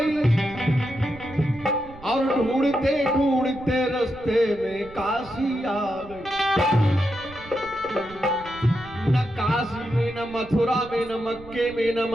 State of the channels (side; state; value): right; noise; rumble, 19 dB below the sound